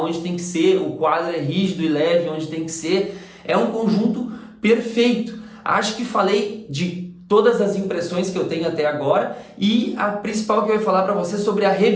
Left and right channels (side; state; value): both; identical; correlation 1.00